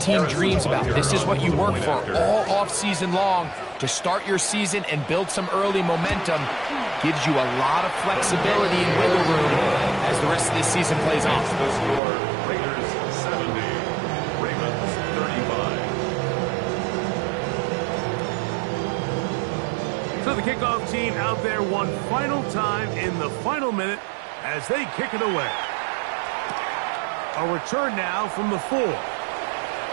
dreams about. This is what you work for all off-season long, to start your season and build some early momentum. Gives you a lot of flexibility and wiggle room as the rest of this season plays on. The score, Raiders 70, Ravens 35. So the kickoff team out there one final time in the final minute as they kick it away. A return now from the 4.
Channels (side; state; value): left; drops out; at 12.0 s